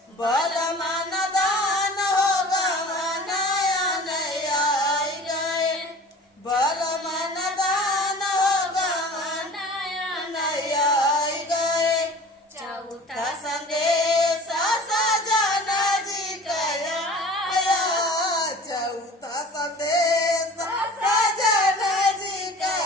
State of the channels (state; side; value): normal; both; correlation 0.42